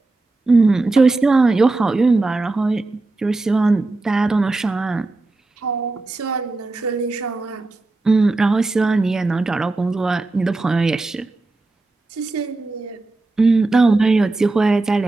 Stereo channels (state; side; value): quieter; left; 3.2 dB